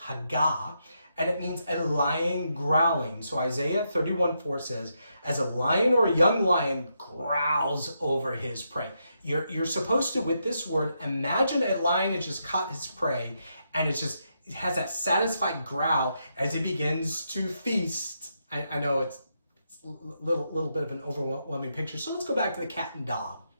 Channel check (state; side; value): inverted; both; correlation -0.81